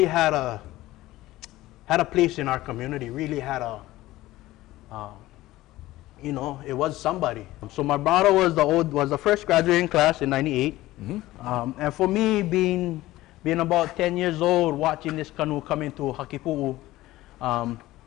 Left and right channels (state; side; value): quieter; right; 16.9 dB